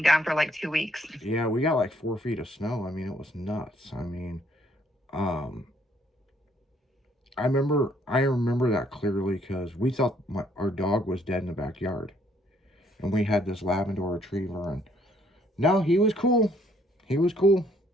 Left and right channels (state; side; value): normal; both; correlation 0.66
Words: down for like 2 weeks. yeah, we got like 4 feet of snow. I mean, it was nuts. I mean, um, I remember that clearly because we thought our dog was dead in the backyard, and we had this Labrador Retriever, and no, he was cool. He was cool.